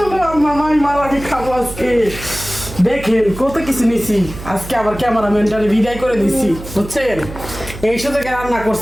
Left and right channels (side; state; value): right; noise; hum, 13 dB below the sound